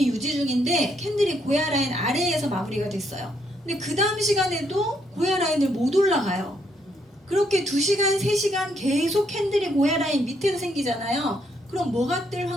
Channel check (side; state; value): both; normal; correlation 0.73